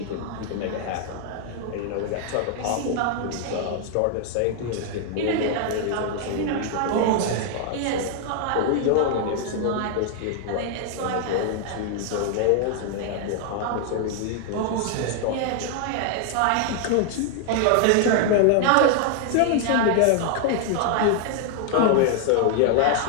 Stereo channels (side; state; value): both; different; correlation 0.00